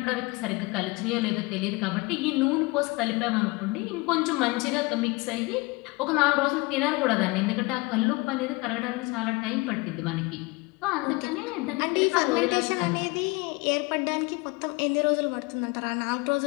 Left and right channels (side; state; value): right; quieter; 24.9 dB